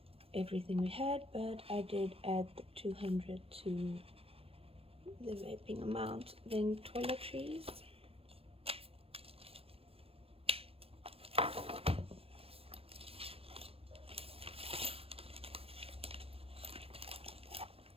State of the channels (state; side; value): late; left; 0.28 ms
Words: everything we had, but I did add the 200 to the vaping amount. Then toiletries,